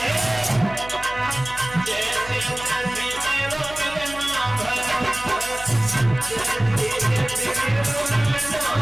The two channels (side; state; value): right; noise; hum, 16 dB below the sound